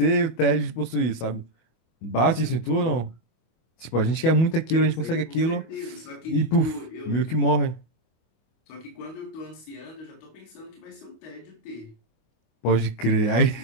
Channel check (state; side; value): late; right; 25 ms